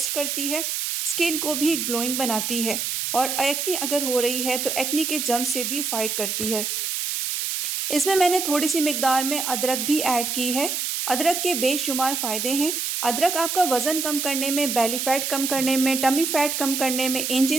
करती है, स्किन को भी ग्लोइंग बनाती है और एक्ने अगर हो रही है तो एक्ने के जर्म से भी फाइट करती है। इसमें मैंने थोड़ी सी मिकदार में अदरक भी ऐड की है। अदरक के बेशुमार फ़ायदे हैं। अदरक आपका वज़न कम करने में, बेली फैट कम करने में, टमी फैट कम करने में,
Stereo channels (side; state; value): right; noise; hiss, 2 dB below the sound